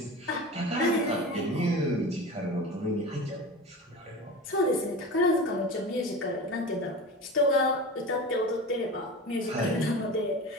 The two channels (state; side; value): normal; both; correlation 0.31